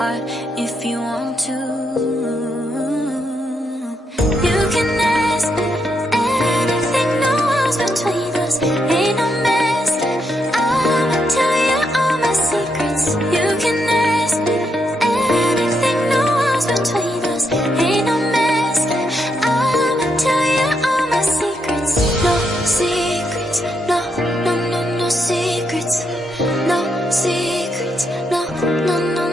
if you want to. You can ask me anything, no walls between us, ain't no mess. I'ma tell you all my secrets. You can ask me anything, no walls between us, ain't no mess. I'ma tell you all my secrets. No secrets, no, no, no, no secrets. No secrets, no, no, no,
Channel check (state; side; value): normal; both; correlation 0.80